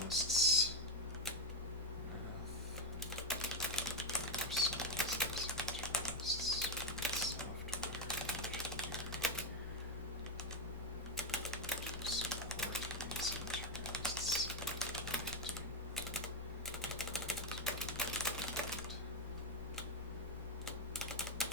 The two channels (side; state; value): both; normal; correlation 0.08